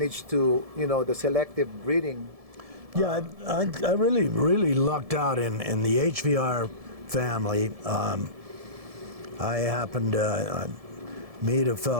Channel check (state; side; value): late; left; 1.7 ms